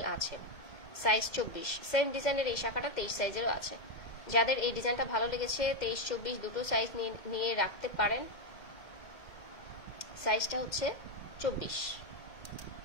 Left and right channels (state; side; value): late; right; 2.1 ms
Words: আছে। সাইজ 24, সেম ডিজাইনের এই শাখাটা 23 সাইজেরও আছে। যাদের এই ডিজাইনটা ভালো লেগেছে 23, 24 দুটো সাইজ নিয়ে রাখতে পারেন। সাইজটা হচ্ছে 24।